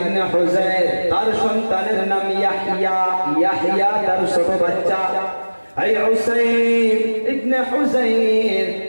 হুযাইর, তার সন্তানের নাম ইয়াহইয়া। ইয়াহইয়া তার ছোট বাচ্চা। এই উসাইর ইবনে হুযাইর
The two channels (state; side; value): inverted; both; correlation -1.00